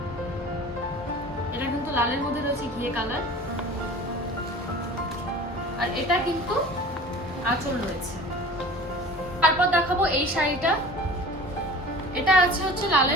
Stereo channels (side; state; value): both; normal; correlation 0.41